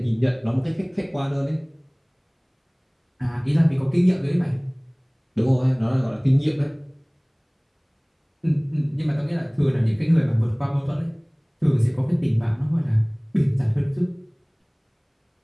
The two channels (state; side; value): identical; both; correlation 1.00